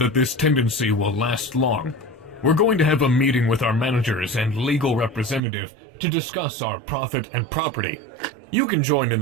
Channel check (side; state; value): left; drops out; at 5.4 s